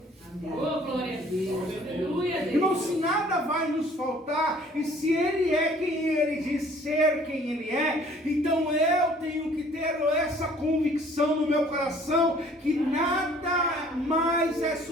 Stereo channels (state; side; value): normal; both; correlation 0.55